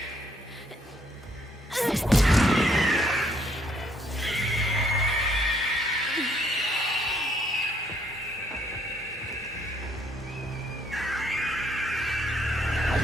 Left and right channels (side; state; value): both; normal; correlation 0.68